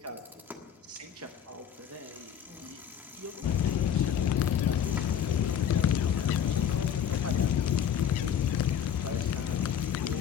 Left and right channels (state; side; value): quieter; right; 8.9 dB